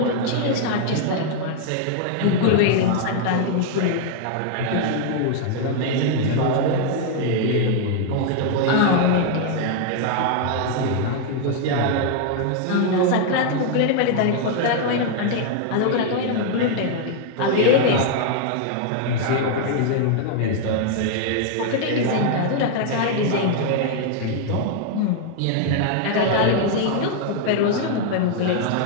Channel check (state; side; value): different; both; correlation 0.00